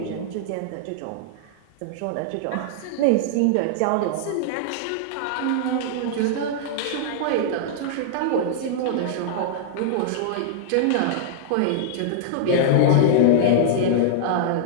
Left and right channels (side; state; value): both; different; correlation -0.01